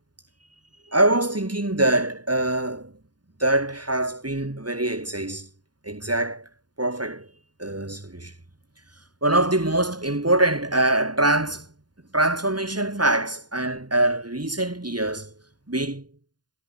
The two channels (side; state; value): left; late; 0.70 ms